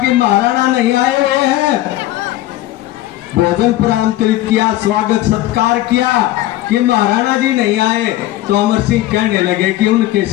कि महाराणा नहीं आए हुए हैं, भोजन आमंत्रित किया, स्वागत सत्कार किया कि महाराणा जी नहीं आए, तो अमर सिंह कहने लगे कि उनके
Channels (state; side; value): quieter; right; 15.3 dB